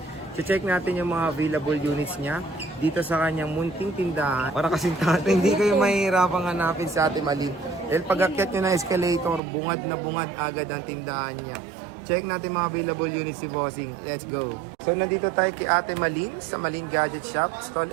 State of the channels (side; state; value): left; drops out; at 9.4 s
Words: Check natin yung mga available units niya dito sa kanyang munting tindahan. Para kasing tato, hindi kayo mahihirapang hanapin si Ate Malin. Dahil pag-akyat nyo na escalator, bungad na bungad agad ang tindahan niya. Check natin mga available units si Bossing. Let's go! So nandito tayo kay Ate Malin sa Malin Gadget Shop, Stall